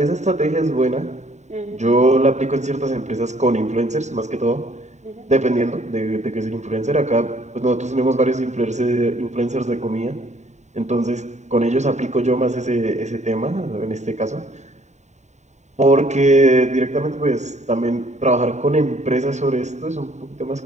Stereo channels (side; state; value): left; late; 0.34 ms